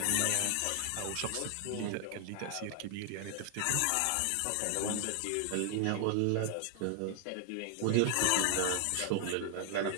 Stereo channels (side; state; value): both; different; correlation 0.00